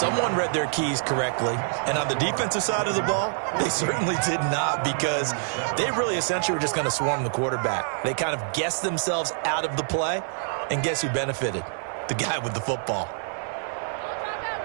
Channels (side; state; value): left; silent; digital silence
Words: read their keys correctly, and on the defensive side of the ball, they certainly did not, because they really essentially were just going to swarm the quarterback. They kind of guessed themselves out of the play, and guess who benefited? The guy with the football.